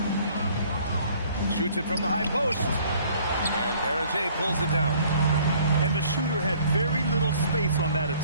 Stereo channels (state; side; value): inverted; both; correlation -0.57